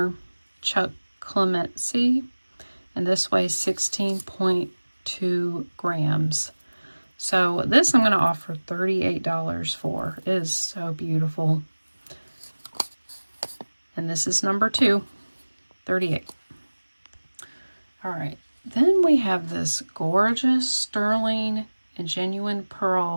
Chuck Clemency, and this weighs 16.2 grams. So this I'm going to offer $38 for. It is so beautiful. And this is number 2, 38. All right, then we have this gorgeous sterling and genuine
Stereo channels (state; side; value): inverted; both; correlation -1.00